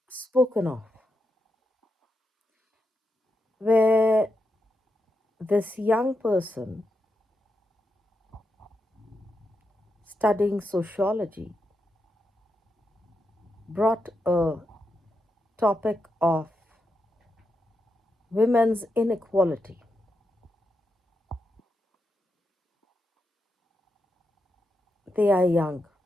spoken of where this young person studying sociology brought a topic of women's inequality. They are young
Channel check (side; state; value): both; normal; correlation 0.85